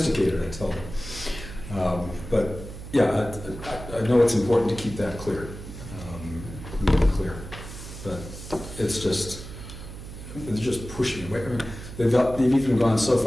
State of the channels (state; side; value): noise; right; hum, 12 dB below the sound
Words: I tell them. But yeah, I know it's important to keep that clear. But it's just pushing away. I mean, they've even gone so